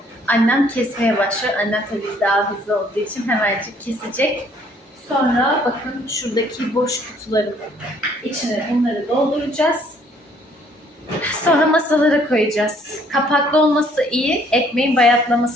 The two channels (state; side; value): normal; both; correlation 0.62